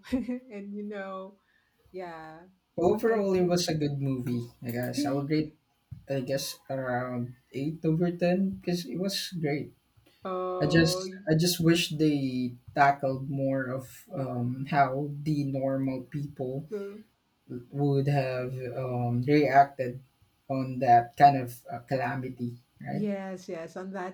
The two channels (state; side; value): identical; both; correlation 1.00